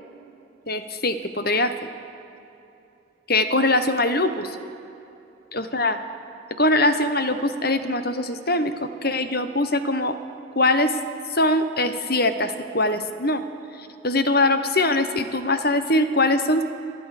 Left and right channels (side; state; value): both; normal; correlation 0.00